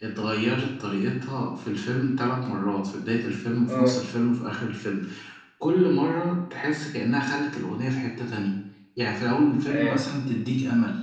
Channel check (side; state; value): both; identical; correlation 1.00